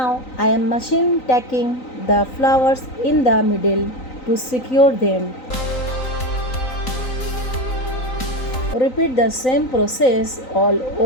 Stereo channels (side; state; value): right; late; 3.9 ms